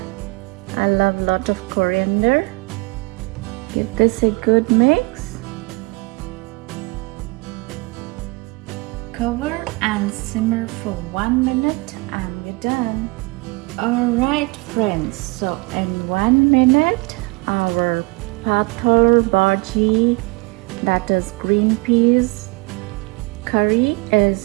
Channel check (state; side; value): quieter; left; 26.9 dB